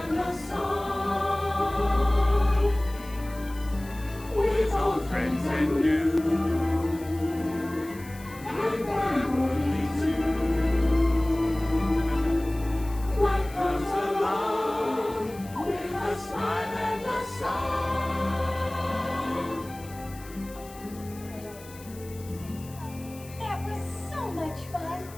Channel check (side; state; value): left; noise; hiss, 20 dB below the sound